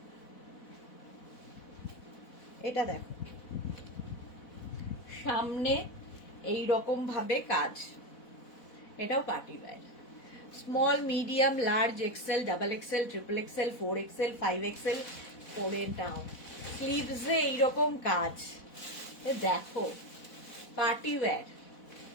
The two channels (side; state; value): right; late; 4.1 ms